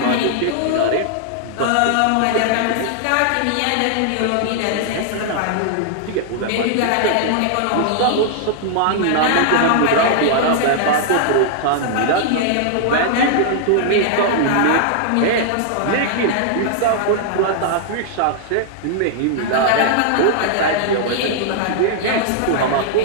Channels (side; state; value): both; different; correlation -0.01